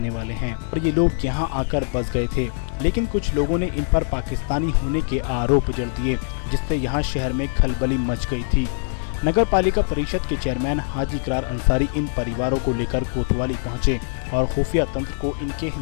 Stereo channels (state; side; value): silent; right; digital silence